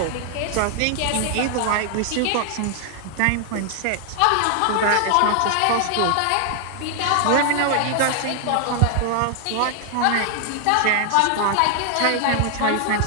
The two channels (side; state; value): both; different; correlation 0.00